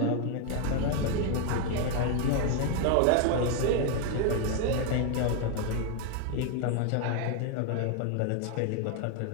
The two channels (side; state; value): both; different; correlation 0.01